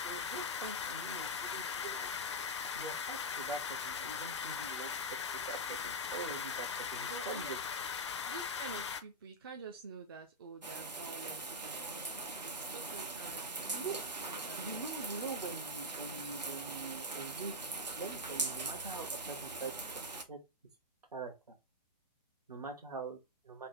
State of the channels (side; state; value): both; normal; correlation 0.00